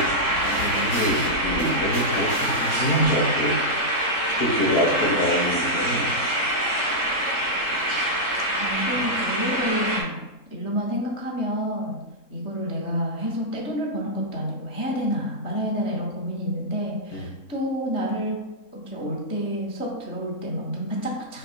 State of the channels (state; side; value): late; right; 3.8 ms